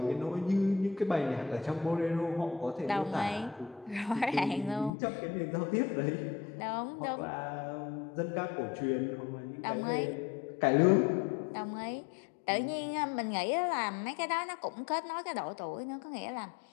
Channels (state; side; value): drops out; right; at 4.9 s